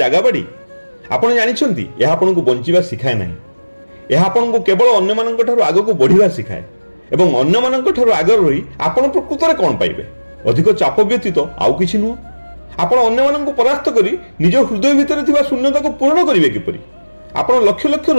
ଜାଗା ବାଡ଼ି? ଆପଣ ଜାଣିଛନ୍ତି ଏହା ଆପଣଙ୍କୁ ବଞ୍ଚିବା ଶିଖାଏ ନାହିଁ। ଏହା ଆପଣଙ୍କୁ କେବଳ ଅନ୍ୟମାନଙ୍କ ଠାରୁ ଆଗକୁ ବଢ଼ିବା ଶିଖାଏ। ଏବଂ ଅନ୍ୟମାନଙ୍କ ଠାରୁ ଆଗରେ ରହି ଆପଣ ପ୍ରକୃତରେ କ'ଣ ପାଇବେ? ଅଧିକ ଚାପ ବ୍ୟତୀତ ଆଉ କିଛି ନୁହଁ। ଆପଣ ଅନ୍ୟମାନଙ୍କୁ ପରାସ୍ତ କରି ନିଜ ହୃଦୟ ଭିତରେ ଥିବା ଶୂନ୍ୟତାକୁ ପୂରଣ କରିବେ କିପରି? ଆପଣ ଲକ୍ଷ ଲକ୍ଷ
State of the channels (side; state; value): both; inverted; correlation -1.00